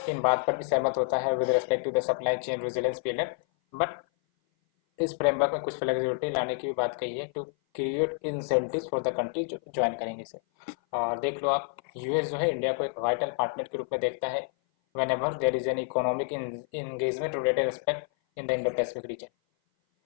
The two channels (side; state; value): right; silent; 56 dB below the other